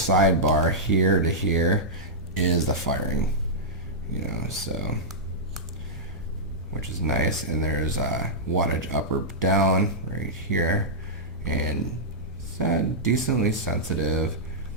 here to here is the firing, you know, so, which is nice. And there's wattage up or down right here, and it's decently sensitive,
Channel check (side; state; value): both; normal; correlation -0.11